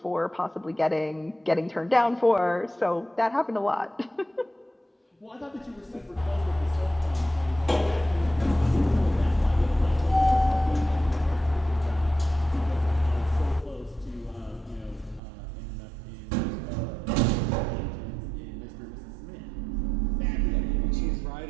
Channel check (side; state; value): left; drops out; at 15.2 s